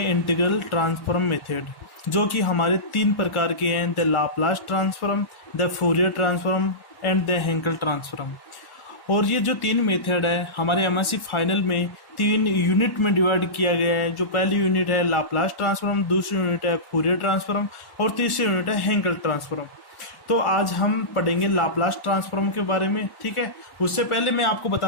इंटीग्रल ट्रांसफॉर्म मेथड, जो कि हमारे तीन प्रकार के हैं: the Laplace transform, the Fourier transform and the Hankel transform. और ये जो तीन मेथड है हमारे एमएससी फाइनल में तीन यूनिट में डिवाइड किया गया है। जो पहली यूनिट है लाप्लास ट्रांसफॉर्म, दूसरी यूनिट है फूरियर ट्रांसफॉर्म और तीसरी यूनिट है हेंकल ट्रांसफॉर्म। तो आज हम पढ़ेंगे लाप्लास ट्रांसफॉर्म के बारे में, ठीक है। उससे पहले मैं आपको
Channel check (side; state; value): right; late; 1.1 ms